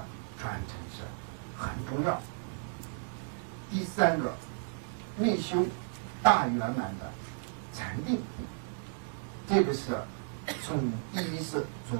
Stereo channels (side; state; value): left; silent; digital silence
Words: 传承是很重要。第三个，内修大圆满的禅定，这个是从第一是